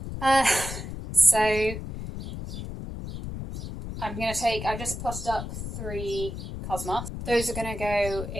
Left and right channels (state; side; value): noise; left; rumble, 7 dB below the sound